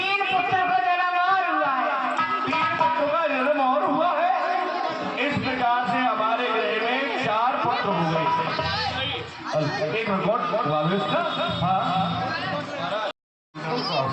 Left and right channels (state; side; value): identical; both; correlation 1.00